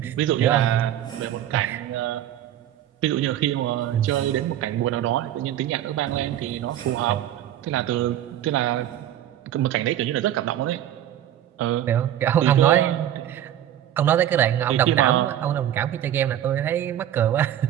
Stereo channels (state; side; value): quieter; left; 11.5 dB